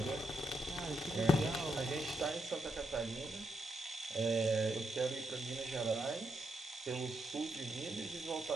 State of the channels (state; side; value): normal; both; correlation 0.81